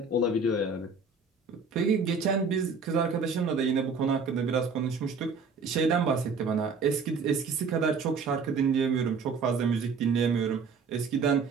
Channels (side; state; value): left; quieter; 4.7 dB